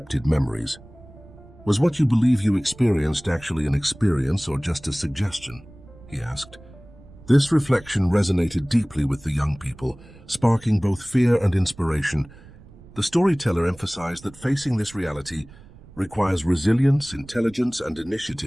memories. Was what you believe you experienced actually an experience or just a suggestion? He asked. This reflection resonated deeply with the young people, sparking both fear and inspiration. The storyteller emphasized that facing this reality requires resilience, intelligence, and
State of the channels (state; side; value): noise; right; rumble, 22 dB below the sound